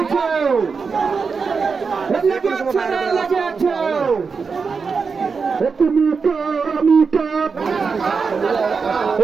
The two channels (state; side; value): quieter; left; 5.2 dB